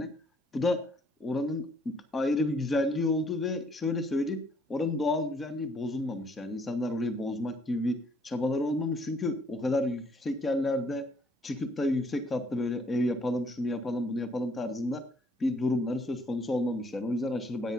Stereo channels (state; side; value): normal; both; correlation 0.66